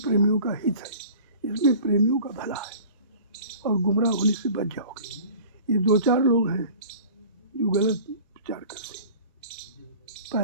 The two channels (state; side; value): inverted; both; correlation -0.44